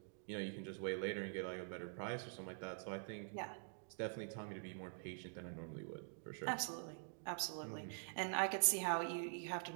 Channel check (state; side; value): silent; left; digital silence